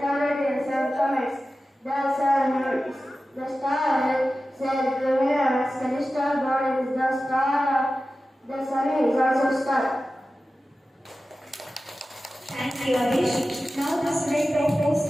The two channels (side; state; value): both; normal; correlation 0.94